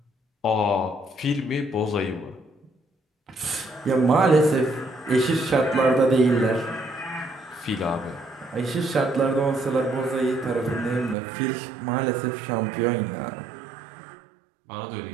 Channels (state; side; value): drops out; left; at 11.2 s